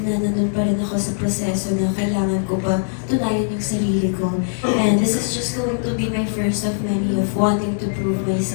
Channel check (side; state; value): right; silent; digital silence